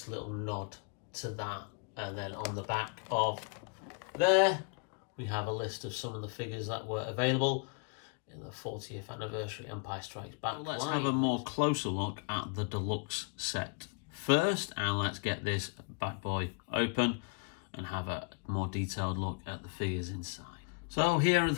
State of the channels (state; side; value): quieter; right; 35.9 dB